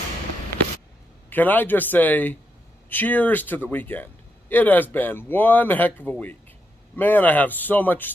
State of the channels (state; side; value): normal; both; correlation 0.82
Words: Can I just say, cheers to the weekend. It has been one heck of a week. Man, I have so much